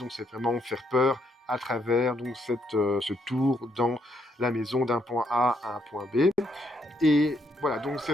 c'est vraiment faire peur à travers donc ce tour dans la maison d'un point A à un point B. Et voilà, donc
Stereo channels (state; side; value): normal; both; correlation 0.74